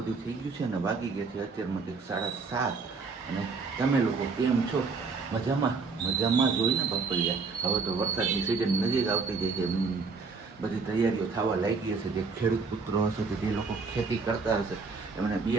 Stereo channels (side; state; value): left; quieter; 4.6 dB